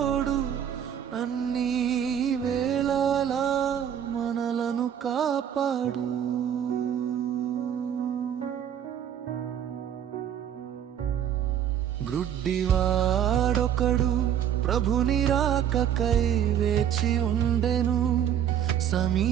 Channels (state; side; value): quieter; left; 9.5 dB